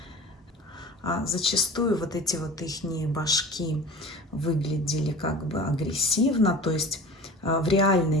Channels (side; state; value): both; normal; correlation 0.38